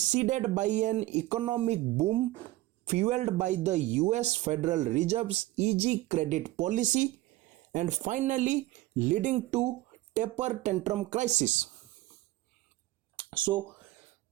by an economic boom fueled by the US Federal Reserve's easy credit policy and finally leading to taper tantrum crisis. So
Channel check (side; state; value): left; quieter; 17.4 dB